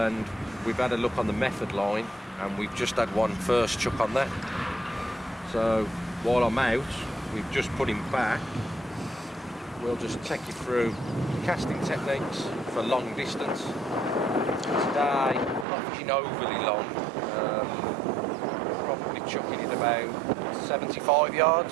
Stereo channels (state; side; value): drops out; left; at 15.7 s